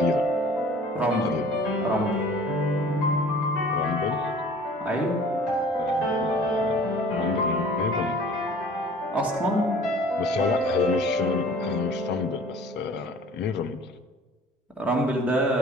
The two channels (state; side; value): normal; both; correlation 0.48